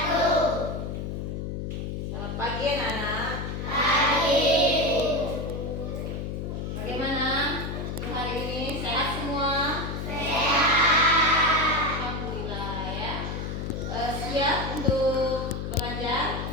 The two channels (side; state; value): left; noise; hum, 4 dB below the sound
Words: Selamat pagi anak-anak. Pagi. Bagaimana hari ini? Sehat semua? Sehat. Alhamdulillah ya. Siap untuk belajar?